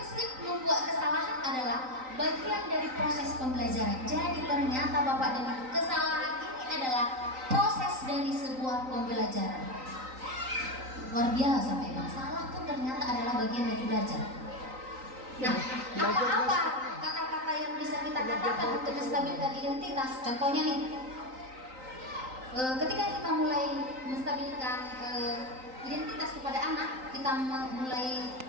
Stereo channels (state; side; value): late; left; 3.9 ms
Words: membuat kesalahan adalah bagian dari proses pembelajaran. Jadi ternyata Bapak dan Ibu, kesalahan ini adalah proses dari sebuah pembelajaran. Luar biasa memang, salah pun ternyata adalah bagian dari belajar. Nah, apa-apa kata-kata yang bisa kita katakan untuk menstabilkan identitas? Contohnya nih, ketika kita mulai menstabilkan identitas kepada anak, kita mulai